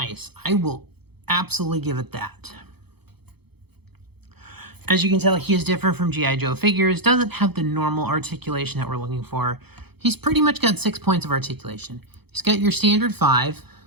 I will absolutely give it that. As you can tell, he is different from G.I. Joe figures. Doesn't have the normal articulation that we're looking for. He's pretty much got 6 points of articulation. He's got your standard 5,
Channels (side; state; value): left; late; 0.98 ms